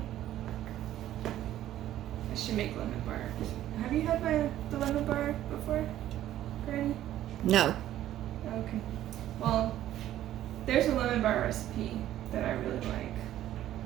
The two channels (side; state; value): left; quieter; 12.8 dB